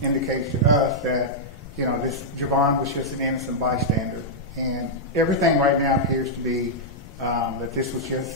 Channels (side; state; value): both; normal; correlation -0.08